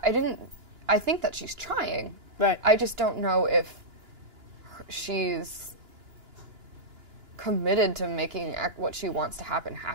think that she's trying. Right. I just don't know if she's committed to making what she wants to happen.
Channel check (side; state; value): left; late; 2.9 ms